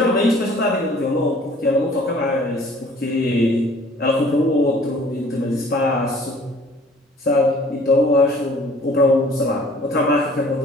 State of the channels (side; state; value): both; normal; correlation 0.53